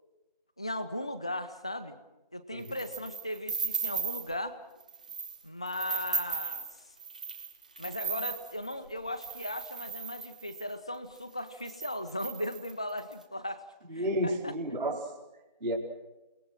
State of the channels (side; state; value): both; inverted; correlation -0.34